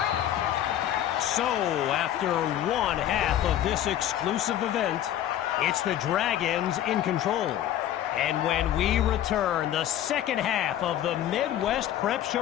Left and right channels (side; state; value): right; quieter; 11.7 dB